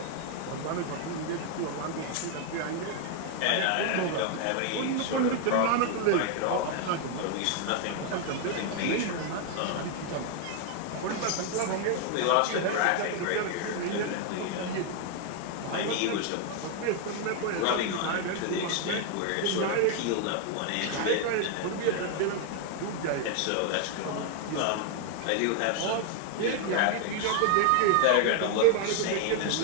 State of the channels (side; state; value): both; different; correlation 0.00